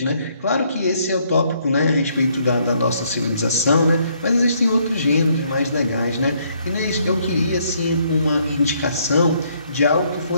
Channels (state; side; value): inverted; both; correlation -0.69